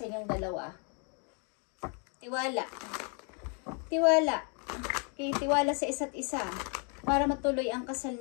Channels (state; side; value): quieter; right; 37.4 dB